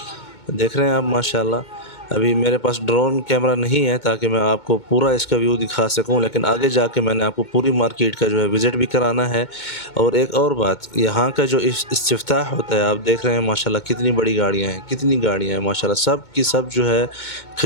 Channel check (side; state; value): right; late; 2.2 ms